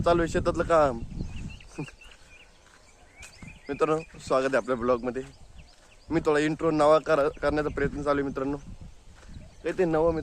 चालू आहे शेतातलं काम. मित्रांनो स्वागत आहे आपल्या ब्लॉगमध्ये. मी थोडा इंट्रो नवा करण्याचा प्रयत्न चालू आहे मित्रांनो. काहीतरी नवं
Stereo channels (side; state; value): both; identical; correlation 1.00